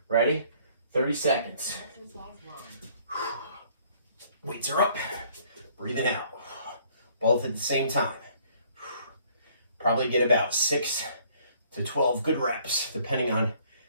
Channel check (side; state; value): both; inverted; correlation -0.60